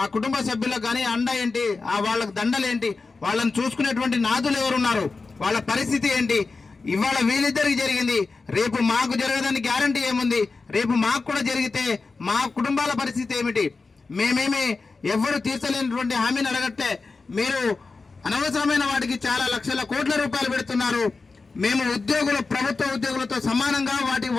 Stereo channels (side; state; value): right; quieter; 4.1 dB